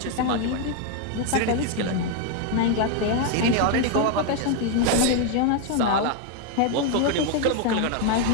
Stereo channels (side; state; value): both; different; correlation 0.01